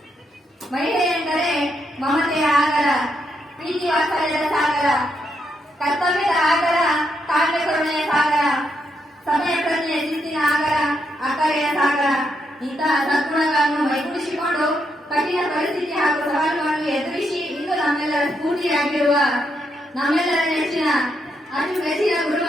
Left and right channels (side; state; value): both; normal; correlation 0.79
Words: ಮಹಿಳೆ ಎಂದರೆ ಮಮತೆಯ ಆಗರ, ಪ್ರೀತಿ ವಾತ್ಸಲ್ಯದ ಸಾಗರ, ಕರ್ತವ್ಯದ ಆಗರ, ಕಾವ್ಯ ಕರುಣೆಯ ಸಾಗರ, ಸಮಯ ಪ್ರಜ್ಞೆಯ ಶಿಸ್ತಿನ ಆಗರ, ಅಕ್ಕರೆಯ ಸಾಗರ. ಇಂತಹ ಸದ್ಗುಣಗಳನ್ನು ಮೈಗೂಡಿಸಿಕೊಂಡು ಕಠಿಣ ಪರಿಸ್ಥಿತಿ ಹಾಗೂ ಸವಾಲುಗಳನ್ನು ಎದುರಿಸಿ ಇಂದು ನಮ್ಮೆಲ್ಲರ ಸ್ಫೂರ್ತಿಯಾಗಿರುವ ನಮ್ಮೆಲ್ಲರ ನೆಚ್ಚಿನ ಅತಿ ಮೆಚ್ಚಿನ